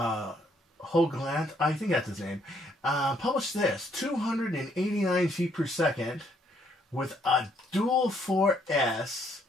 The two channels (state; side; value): normal; both; correlation 0.69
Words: I think that's his name, published this, 289 feet per second with a dual 4S